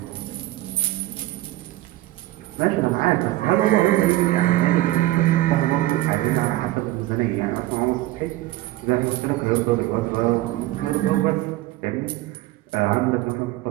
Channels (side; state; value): left; quieter; 16.7 dB